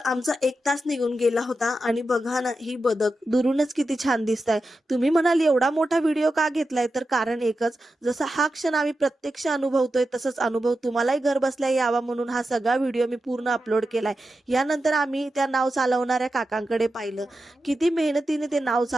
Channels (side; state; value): both; normal; correlation 0.90